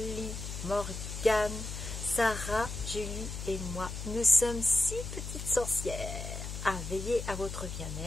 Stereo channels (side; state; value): left; noise; hum, 7 dB below the sound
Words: Morgane, Sarah, Julie et moi. Nous sommes 6 petites sorcières à veiller à votre